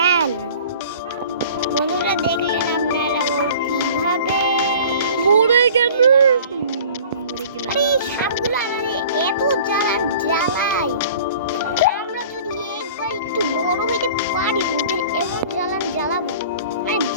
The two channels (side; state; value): both; inverted; correlation -0.46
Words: বন্ধুরা দেখলেন আপনারা ও কিভাবে মরে গেল। এই সাপগুলো আমাদের এত জ্বালায়। আমরা যদি একবার একটু বড় হইতে পারি ওদের এমন জ্বালাবো মানে